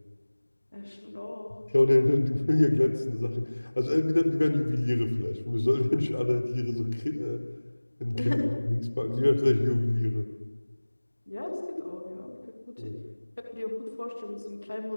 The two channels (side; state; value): both; inverted; correlation -1.00